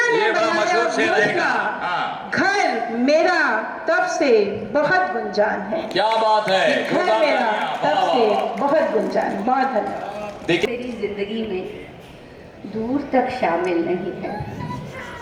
ने बनाया घोंसला, घर मेरा तब से बहुत गुंजान है। क्या बात है, घर मेरा तब से बहुत गुंजान। बहुत धन्यवाद। मेरी जिंदगी में दूर तक शामिल नहीं है,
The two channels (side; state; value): both; identical; correlation 1.00